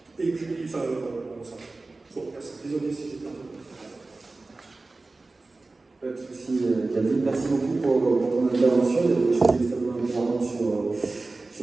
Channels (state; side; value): quieter; left; 3.4 dB